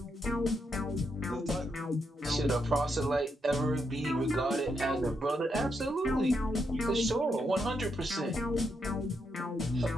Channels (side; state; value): both; normal; correlation 0.81